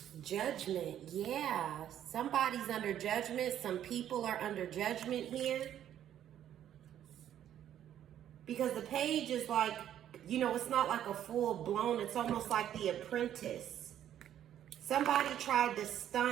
Judgment, yeah. Somebody's under judgment. Some people are under judgment here. Because the page is like, you know, it's not like a full blown, it's almost like The Apprentice. Somebody tried to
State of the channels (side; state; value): left; quieter; 10.8 dB